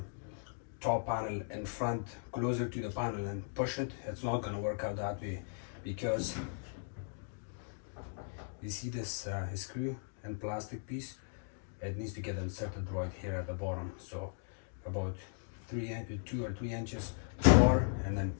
top panel in front, closer to the panel, and push it. It's not going to work out that way, because you see this screw and plastic piece, it needs to get inserted right here at the bottom. So about 2 or 3 inches far, and then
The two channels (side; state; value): right; silent; digital silence